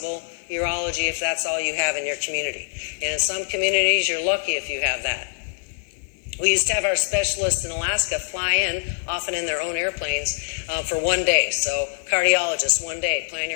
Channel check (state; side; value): silent; right; digital silence